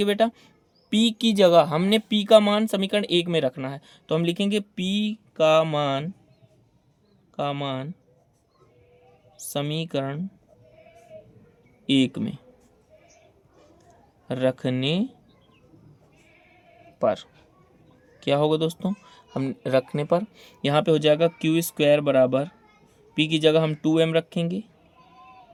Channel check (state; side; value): identical; both; correlation 1.00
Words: बेटा, p की जगह हमने p का मान समीकरण 1 में रखना है, तो हम लिखेंगे p का मान समीकरण 1 में रखने पर क्या होगा दोस्तों, हम रखने पर यहाँ पे हो जाएगा क्यू स्क्वायर बराबर p की जगह हम 2m रखेंगे।